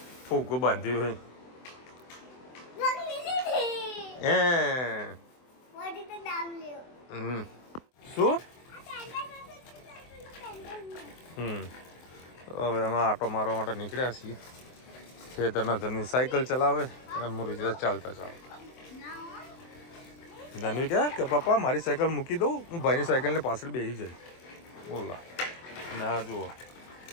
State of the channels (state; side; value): late; right; 24 ms